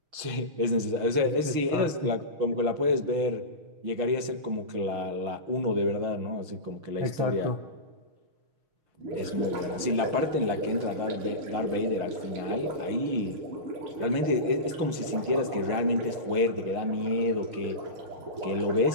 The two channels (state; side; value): late; left; 6.4 ms